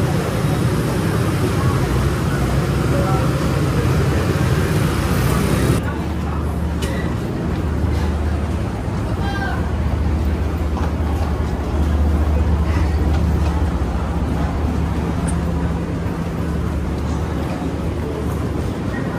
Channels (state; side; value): identical; both; correlation 1.00